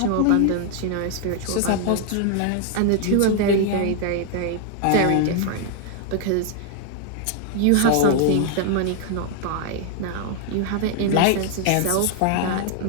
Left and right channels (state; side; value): different; both; correlation 0.00